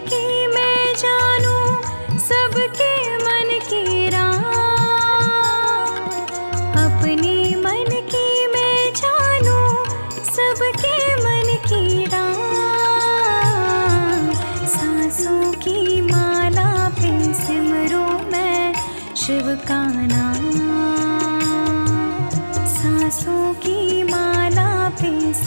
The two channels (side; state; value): both; inverted; correlation -1.00